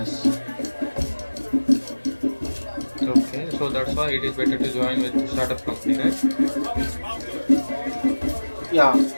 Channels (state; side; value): inverted; both; correlation -1.00